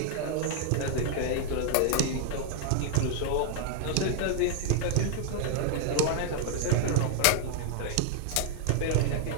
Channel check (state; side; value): different; both; correlation 0.00